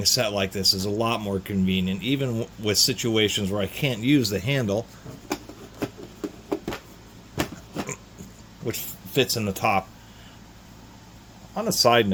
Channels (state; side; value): identical; both; correlation 1.00